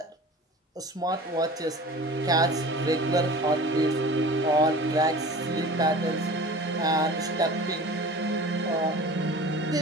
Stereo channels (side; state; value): both; normal; correlation 0.40